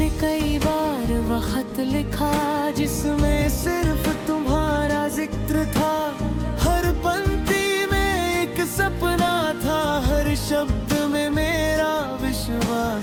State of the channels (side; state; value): both; identical; correlation 1.00